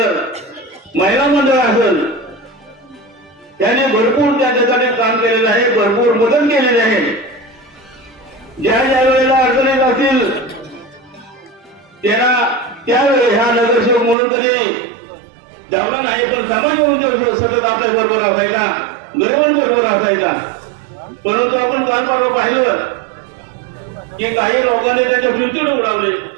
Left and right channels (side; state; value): left; drops out; at 14.2 s